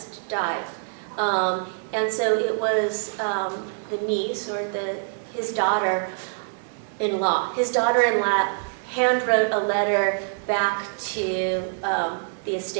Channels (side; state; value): left; silent; digital silence